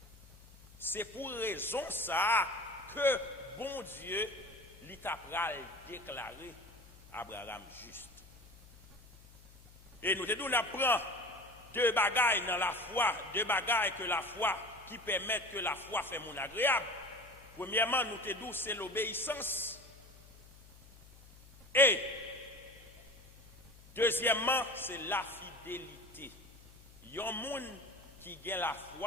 C'est pour raison ça que bon Dieu il t'a déclaré Abraham juste. Et nous te nous apprend deux bagailles dans la foi, deux bagailles que la foi qui permettent que la foi fait mon agréable. Premièrement, nous te dit c'est l'obéissance. Et deuxièmement, c'est la fidélité. Il y a un monde qui gagne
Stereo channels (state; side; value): noise; left; hum, 22 dB below the sound